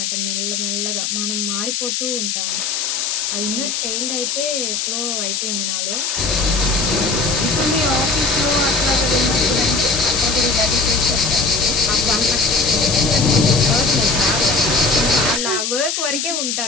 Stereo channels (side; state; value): left; noise; hiss, 1 dB below the sound